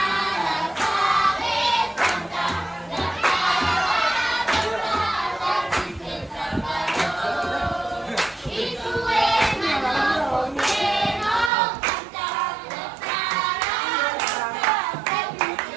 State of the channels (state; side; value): drops out; left; at 11.5 s